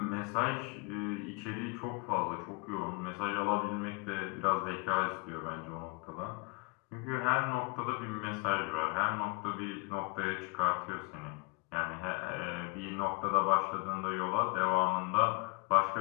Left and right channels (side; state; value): right; quieter; 28.3 dB